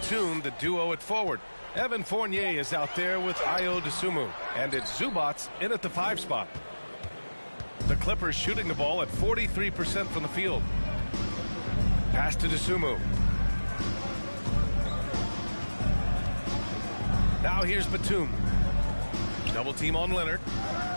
the duo at forward. Evan Fournier is out there with Ayo Dosunmu. And it's Zubats in at the 5 spot. The Clippers shooting the ball at 43% from the field. Pass to Dosunmu. Now here's Batum. Double team on Leonard.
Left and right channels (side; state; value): both; inverted; correlation -1.00